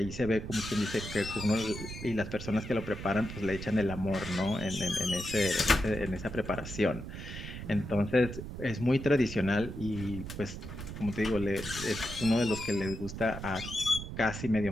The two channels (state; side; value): noise; right; rumble, 9 dB below the sound